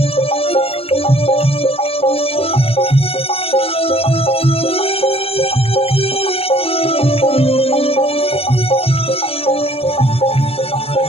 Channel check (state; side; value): late; right; 0.28 ms